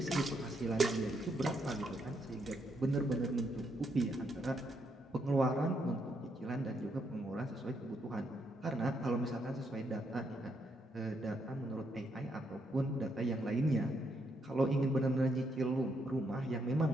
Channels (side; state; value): both; normal; correlation 0.77